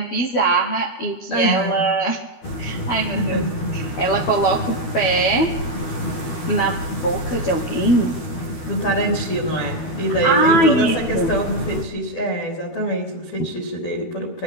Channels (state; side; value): late; right; 12 ms